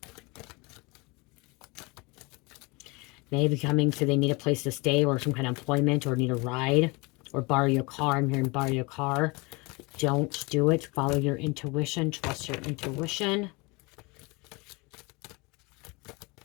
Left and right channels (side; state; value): right; quieter; 27.0 dB